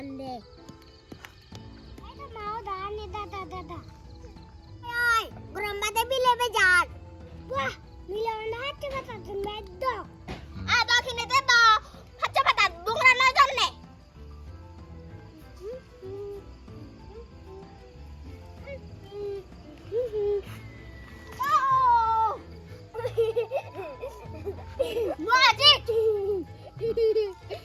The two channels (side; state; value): both; identical; correlation 1.00